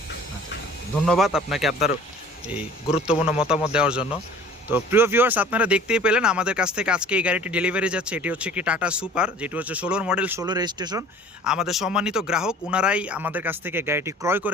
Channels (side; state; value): both; normal; correlation 0.48